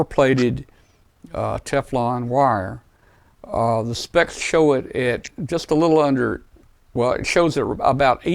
Teflon wire, the specs show it at just a little under. Well, it shows it about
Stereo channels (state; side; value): identical; both; correlation 1.00